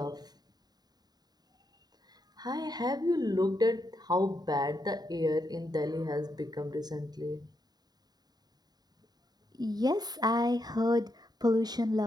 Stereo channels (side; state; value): left; late; 0.19 ms